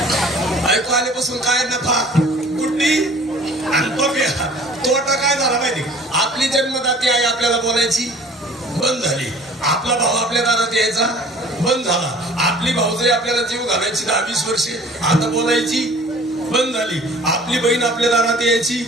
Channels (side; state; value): both; normal; correlation 0.48